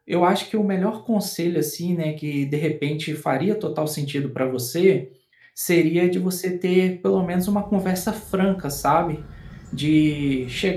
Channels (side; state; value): both; identical; correlation 1.00